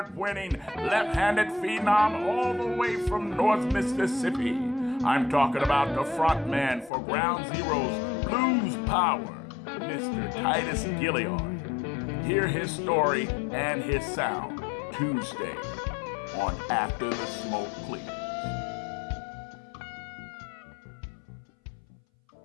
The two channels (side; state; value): right; drops out; at 6.9 s